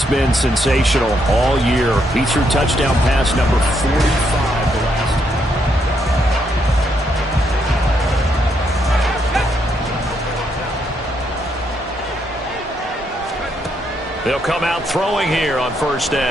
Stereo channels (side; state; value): both; normal; correlation 0.76